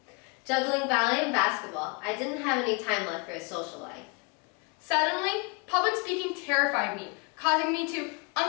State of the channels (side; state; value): right; quieter; 31.8 dB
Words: Juggling ballet and basketball, I didn't have any time left for a social life. Suddenly, public speaking terrified me, causing me to